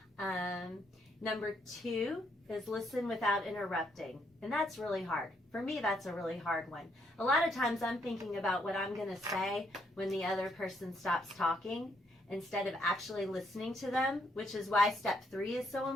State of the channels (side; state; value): both; normal; correlation 0.73